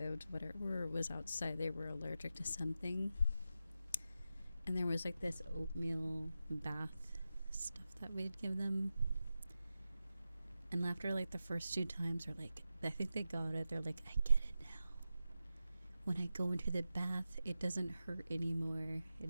whatever was outside, they were allergic to something. And there was like this oatmeal bath stuff that we'd give them. And after like the first 2 times, they're like, I think they got it. They're like, I get it now. When I go into the bath, it doesn't hurt anymore. It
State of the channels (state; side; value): inverted; both; correlation -0.91